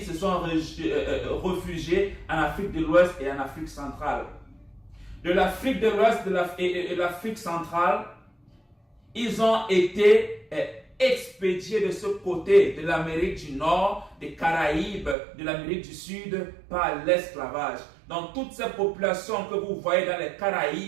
se sont réfugiés en Afrique de l'Ouest et en Afrique centrale. De l'Afrique de l'Ouest et de l'Afrique centrale, ils ont été expédiés de ce côté de l'Amérique du Nord, des Caraïbes, de l'Amérique du Sud par l'esclavage. Donc toutes ces populations que vous voyez dans les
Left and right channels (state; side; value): drops out; left; at 15.2 s